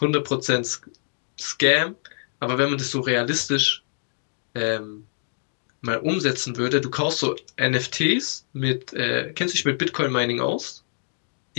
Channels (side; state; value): right; silent; digital silence